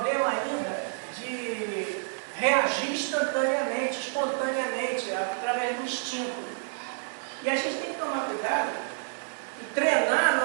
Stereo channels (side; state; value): left; silent; digital silence